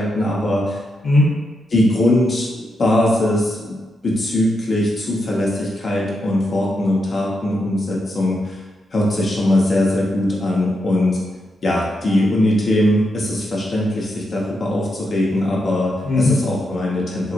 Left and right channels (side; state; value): both; normal; correlation 0.84